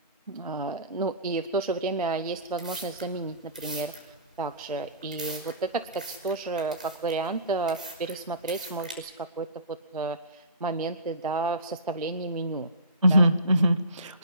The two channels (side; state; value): both; inverted; correlation -0.38